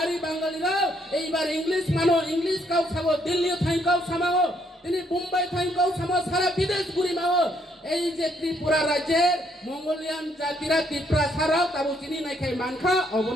বাঙালিরা এইবার ইংলিশ মানো, ইংলিশ কাউ খাবো, দিল্লি থাইকাও সামাও, তিনি মুম্বাই থাইকাও সামাও, সারা বিদেশ ঘুরি মাও। এই যে ত্রিপুরা রাজ্যের মঙ্গোলিয়ান জাতিরা ত্রিপুরা ছাড়াও তাবু চিনি নাই খাই মানখা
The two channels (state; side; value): normal; both; correlation 0.71